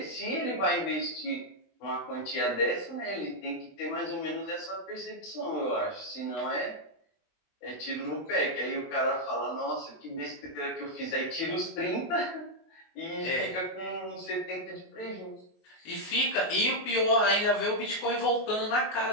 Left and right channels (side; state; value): right; late; 21 ms